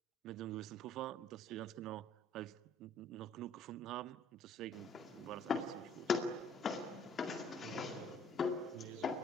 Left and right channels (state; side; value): normal; both; correlation 0.59